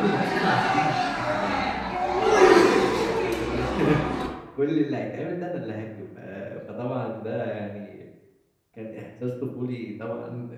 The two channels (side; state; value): both; identical; correlation 1.00